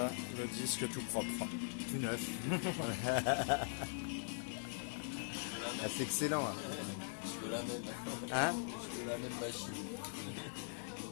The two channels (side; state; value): right; silent; digital silence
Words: le disque tout propre. Tout neuf. Ah, c'est excellent. Hein. Je veux la même. Hein? Je veux la même machine.